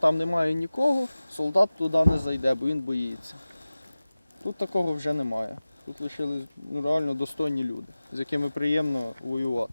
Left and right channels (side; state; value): both; inverted; correlation -0.97